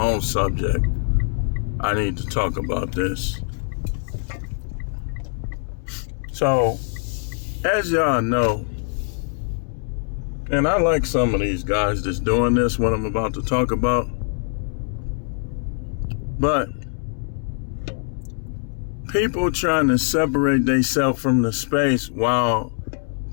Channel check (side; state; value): right; silent; 63 dB below the other